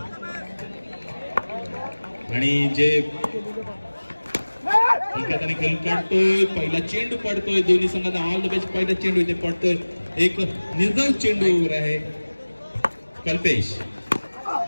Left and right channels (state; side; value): inverted; both; correlation -1.00